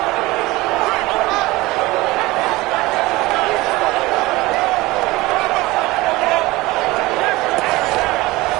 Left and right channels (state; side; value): quieter; left; 20.3 dB